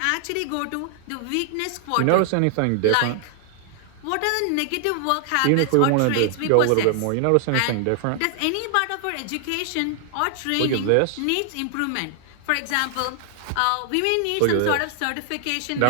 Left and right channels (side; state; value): both; different; correlation 0.00